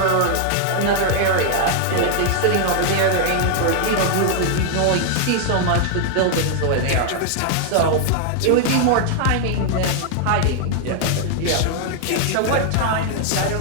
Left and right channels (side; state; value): both; different; correlation 0.00